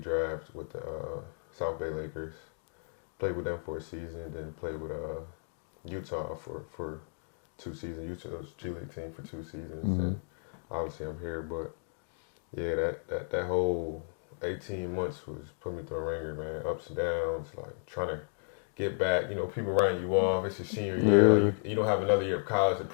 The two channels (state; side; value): silent; right; 55 dB below the other